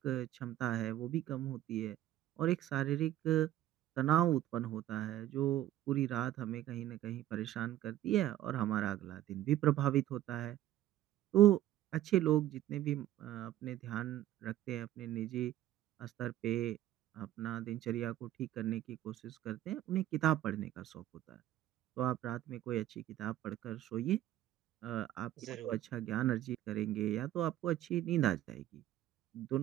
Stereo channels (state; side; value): quieter; left; 13.4 dB